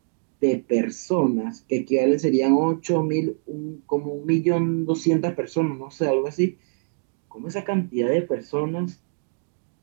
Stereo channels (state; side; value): silent; left; digital silence